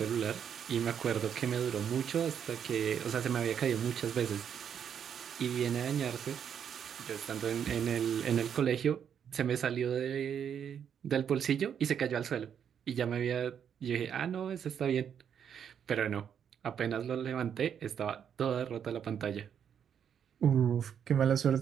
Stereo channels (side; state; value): left; quieter; 8.2 dB